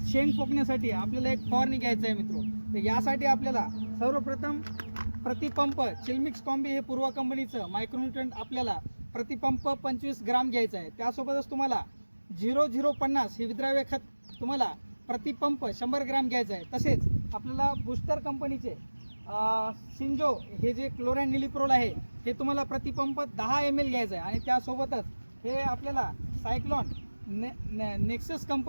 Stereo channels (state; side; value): inverted; both; correlation -1.00